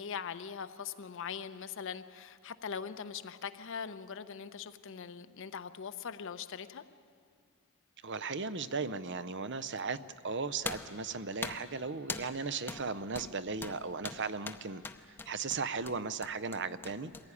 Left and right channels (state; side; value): normal; both; correlation -0.17